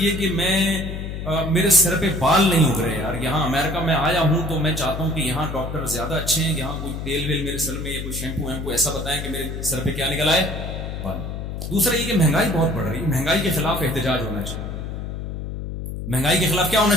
کہ میرے سر پہ بال نہیں اگ رہے یار. یہاں امریکہ میں آیا ہوں تو میں چاہتا ہوں کہ یہاں ڈاکٹر زیادہ اچھے ہیں, یہاں کوئی تیل ویل میرے سر میں یا کوئی شیمپو ویمپو ایسا بتائیں کہ میرے سر پہ کیا نکل آئے, بال. دوسرا یہ کہ مہنگائی بہت بڑھ رہی ہے, مہنگائی کے خلاف احتجاج ہونا چاہیے. مہنگائی کے خلاف کیا ہونا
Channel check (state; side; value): noise; left; hum, 6 dB below the sound